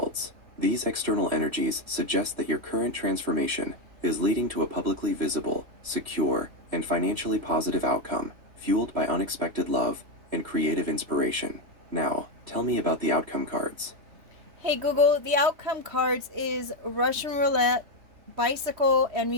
These external energies suggest that your current transformation is leading to a publicly visible, secure, and financially positive outcome, fueled by unexpected love and creative inspiration. Now, tell me about the outcome cards. Hey Google, the outcome cards is Russian roulette, bicycle, and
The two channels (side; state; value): left; late; 3.2 ms